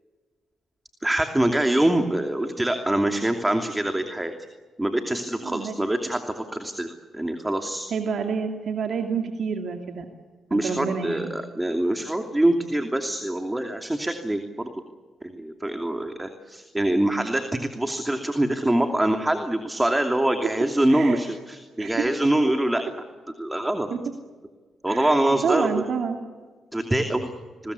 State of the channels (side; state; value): both; normal; correlation 0.95